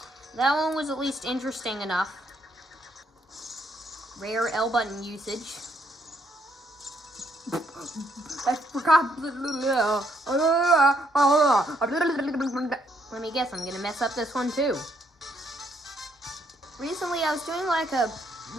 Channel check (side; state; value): both; normal; correlation 0.72